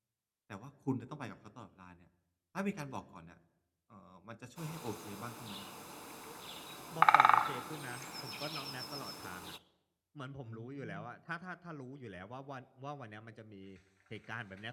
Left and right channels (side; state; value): both; identical; correlation 1.00